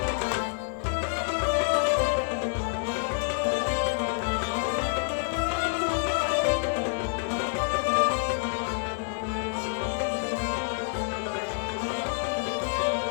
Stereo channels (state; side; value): silent; right; digital silence